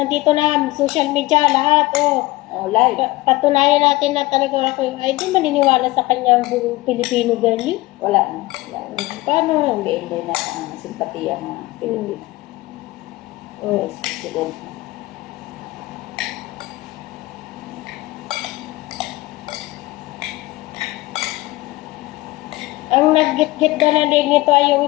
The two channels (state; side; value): quieter; right; 20.1 dB